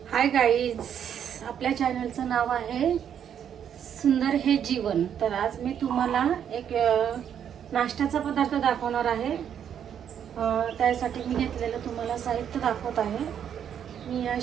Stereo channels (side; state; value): left; quieter; 8.9 dB